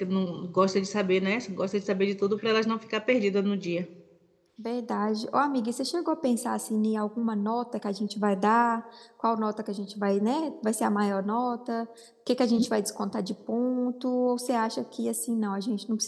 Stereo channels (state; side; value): identical; both; correlation 1.00